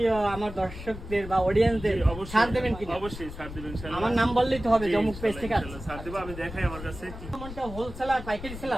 আমার দর্শকদের বা অডিয়েন্সদের ছাড় দেবেন কি? অবশ্যই ছাড় দেবেন ইনশাআল্লাহ। আমার নাম বললেই তো হবে, জমুক পেজ থেকে আছে। ছাড় দেব, আমি দেখাই আমার কাছে কি। সম্মানিত হোলসেলার পাইকারি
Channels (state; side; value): noise; left; rumble, 12 dB below the sound